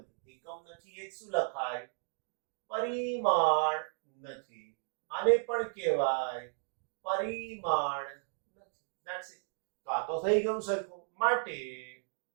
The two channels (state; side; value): silent; left; 55 dB below the other